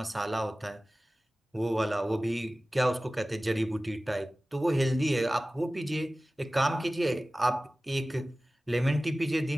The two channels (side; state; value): both; normal; correlation 0.97